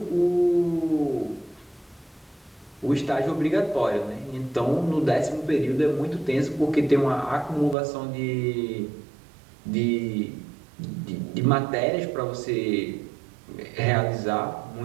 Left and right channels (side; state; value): left; drops out; at 7.8 s